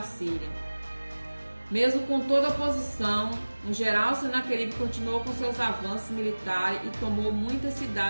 Síria. Mesmo com toda a oposição, no geral, Senaqueribe continuou com seus avanços militares e tomou muitas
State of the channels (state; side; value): inverted; both; correlation -1.00